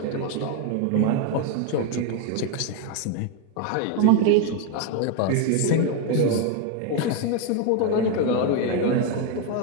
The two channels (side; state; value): both; different; correlation 0.01